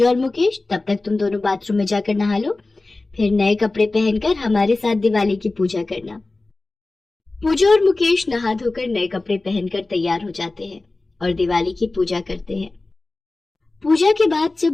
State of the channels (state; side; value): quieter; right; 3.2 dB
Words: और मुकेश, तब तक तुम दोनों बाथरूम में जाकर नहा लो, फिर नए कपड़े पहनकर हमारे साथ दिवाली की पूजा करना। पूजा और मुकेश नहा धोकर नए कपड़े पहनकर तैयार हो जाते हैं और दिवाली की पूजा करते हैं। पूजा के बाद